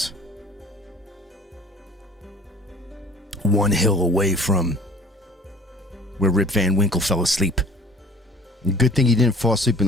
One hill away from where Rip Van Winkle fell asleep. Good thing he didn't fall asleep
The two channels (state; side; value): normal; both; correlation 0.48